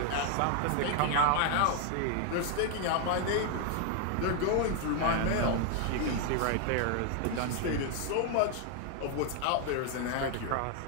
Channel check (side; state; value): both; different; correlation 0.00